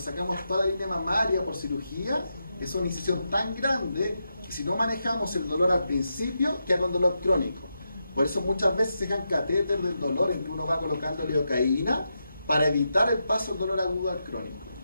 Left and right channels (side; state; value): both; inverted; correlation -0.86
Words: toda la línea mamaria por cirugía, es una incisión tan grande que si no manejamos el dolor al principio, queda con dolor crónico. Por eso muchas veces se dejan catéter del dolor en que uno va colocando lidocaína para evitar el paso del dolor agudo al crónico.